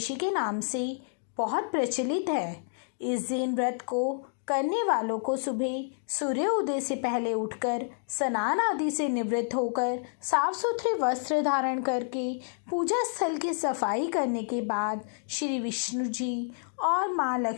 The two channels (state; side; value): silent; right; digital silence